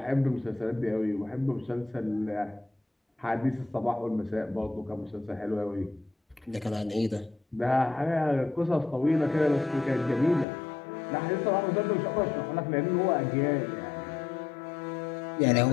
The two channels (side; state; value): right; drops out; at 10.5 s